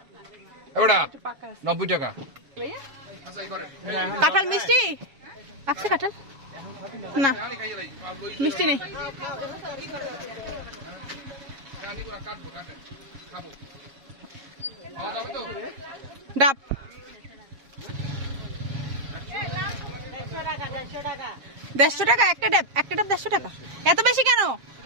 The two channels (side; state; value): left; late; 7.4 ms